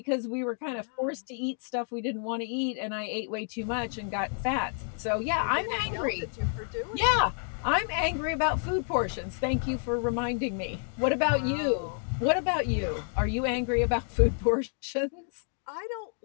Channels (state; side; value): silent; right; 58 dB below the other